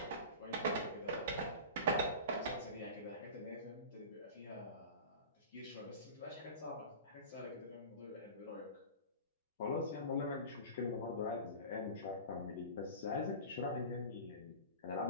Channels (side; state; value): both; inverted; correlation -0.34